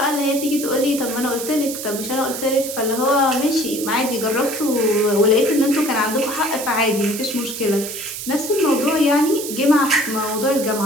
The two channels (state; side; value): noise; right; hiss, 7 dB below the sound